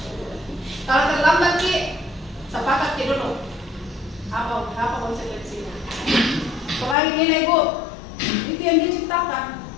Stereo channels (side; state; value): right; drops out; at 7.0 s